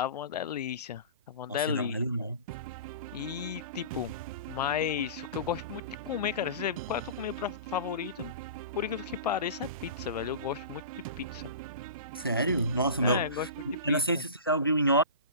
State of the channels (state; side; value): inverted; both; correlation -0.34